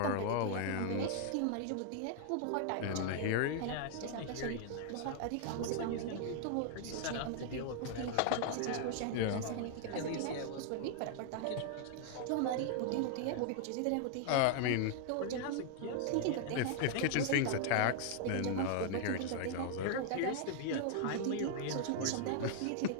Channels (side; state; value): both; different; correlation -0.01